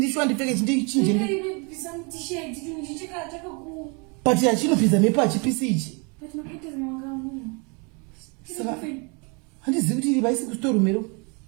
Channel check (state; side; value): quieter; left; 32.7 dB